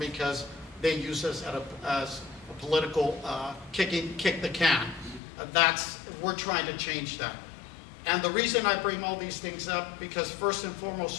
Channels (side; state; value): right; drops out; at 5.2 s